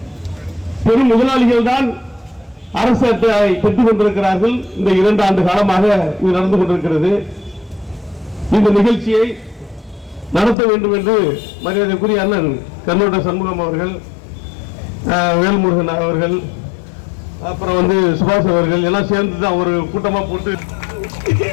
பெரும் முதலாளிகள் தான் அரசு அட்டையை பெற்றுக் கொண்டிருக்கிறார்கள். இந்த 2 ஆண்டு காலமாக இது நடந்து கொண்டிருக்கிறது. இந்த நிகழ்ச்சியை நடத்த வேண்டும் என்று மரியாதைக்குரிய அண்ணன் கண்ணோட்ட சண்முகம் அவர்கள், வேல்முருகன் அவர்கள், அப்புறம் சுபாஷ் அவர்கள் எல்லாம் சேர்ந்து தான் ஒரு கூட்டமா போட்டு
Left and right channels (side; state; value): right; drops out; at 10.6 s